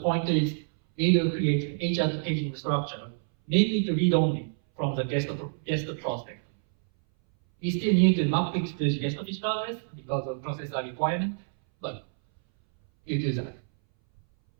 is we will create HChat paging structure mainly to read only from the guest prospect. We still need to map it to the guest physical address because of processor requirement, but you do that.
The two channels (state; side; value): silent; left; 60 dB below the other